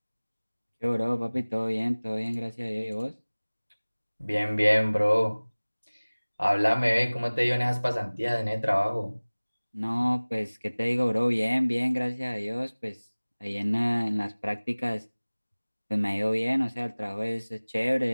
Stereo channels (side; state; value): both; inverted; correlation -1.00